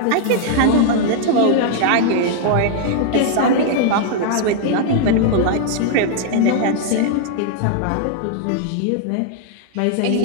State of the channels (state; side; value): different; both; correlation -0.01